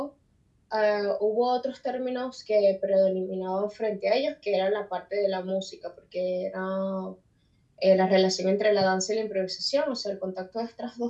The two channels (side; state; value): both; identical; correlation 1.00